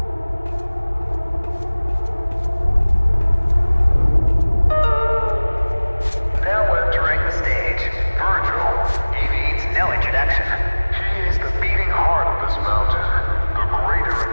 Now entering the stage, Virgil. He needs no introduction. He is the beating heart of this mountain, the greater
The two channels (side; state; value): both; inverted; correlation -1.00